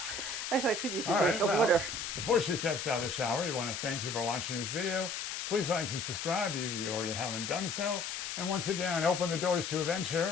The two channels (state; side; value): noise; left; hiss, 4 dB below the sound